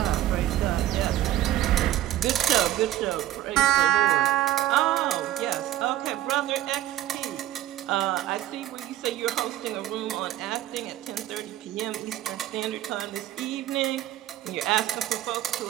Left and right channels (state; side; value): quieter; left; 13.3 dB